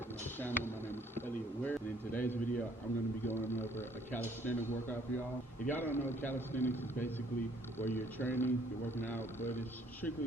to my channel. My name is Elliot Ware, and in today's video I'm going to be going over a calisthenics workout for y'all. If y'all don't know, calisthenics is basically where you're training, you're working out, but it's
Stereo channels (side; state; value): both; normal; correlation 0.62